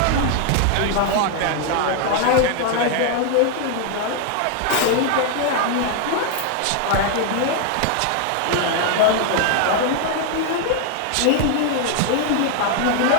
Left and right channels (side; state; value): both; different; correlation 0.00